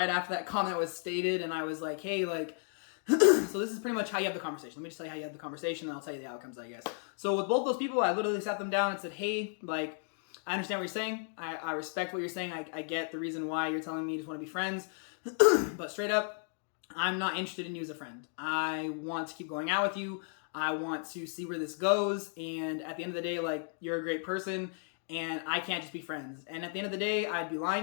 after that comment was stated and I was like, hey, like, so this is pretty much how you have the conversation. Let me just tell you how you have the conversation and I'll tell you the outcomes, I guess. So with both those people, I literally sat them down and said, hey, like, I understand what you're saying. I respect what you're saying. I get the reason why you're telling me you just want to be friends. But straight up, I'm not interested in you as a friend. I want to keep going out with you. I want to see where this goes. And at the end of the day, like, you're a great person and I can't just be friends. And at the end of the day, I'd be lying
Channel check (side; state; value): right; silent; 55 dB below the other